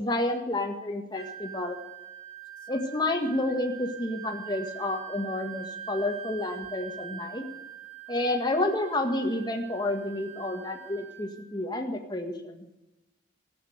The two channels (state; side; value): normal; both; correlation 0.38